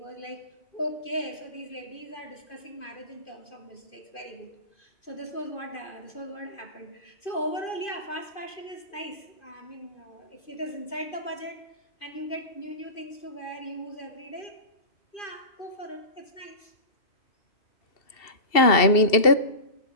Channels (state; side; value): late; right; 2.7 ms